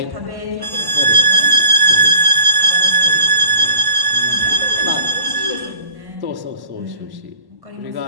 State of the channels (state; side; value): late; left; 1.1 ms